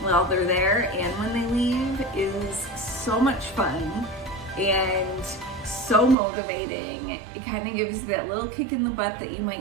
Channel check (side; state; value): left; drops out; at 6.2 s